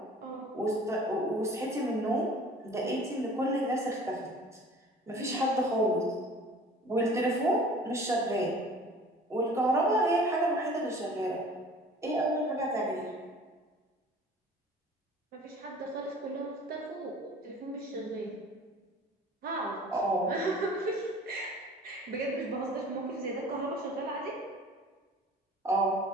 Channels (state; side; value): normal; both; correlation 0.47